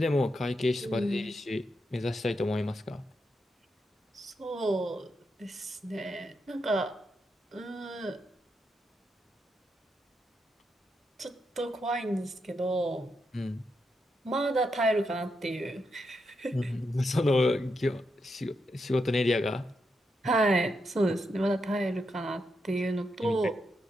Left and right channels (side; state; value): both; normal; correlation 0.83